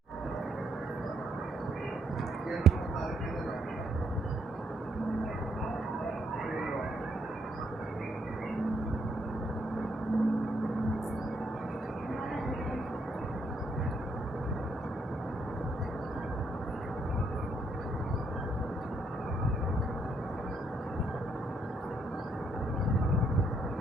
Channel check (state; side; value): normal; both; correlation 0.73